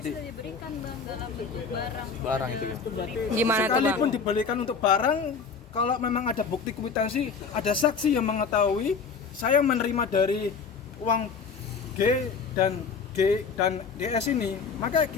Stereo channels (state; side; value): quieter; right; 5.4 dB